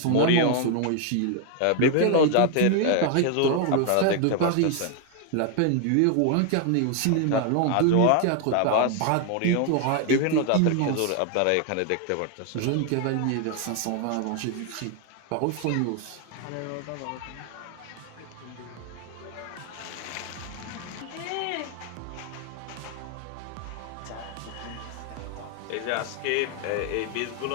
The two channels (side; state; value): both; different; correlation 0.00